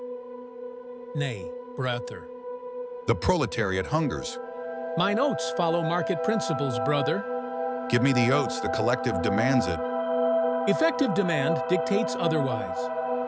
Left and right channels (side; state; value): both; identical; correlation 1.00